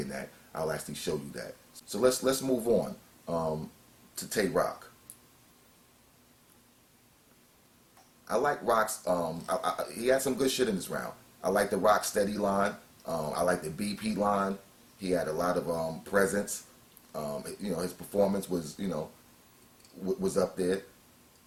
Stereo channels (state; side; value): identical; both; correlation 1.00